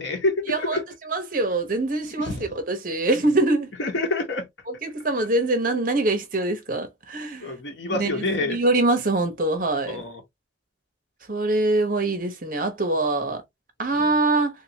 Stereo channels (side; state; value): both; normal; correlation 0.18